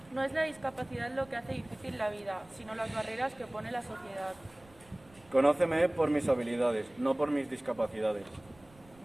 No es la discapacidad lo que hace difícil la vida, sino las barreras que pone la sociedad. Conóceme por mis habilidades, no por mis discapacidades.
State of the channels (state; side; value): noise; right; rumble, 26 dB below the sound